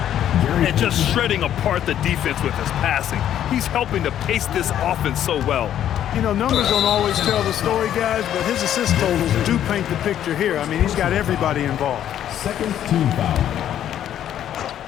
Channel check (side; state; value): right; quieter; 10.7 dB